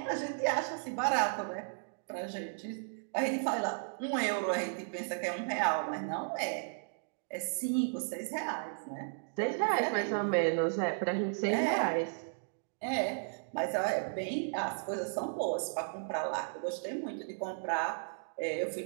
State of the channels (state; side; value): silent; left; digital silence